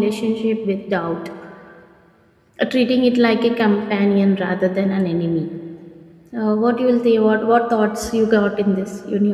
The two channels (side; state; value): both; identical; correlation 1.00